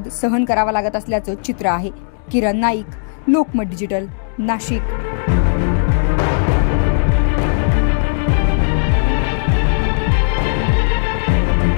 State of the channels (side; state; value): right; silent; digital silence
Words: सहन करावा लागत असल्याचं चित्र आहे. किरण नाईक, लोकमत डिजिटल, नाशिक.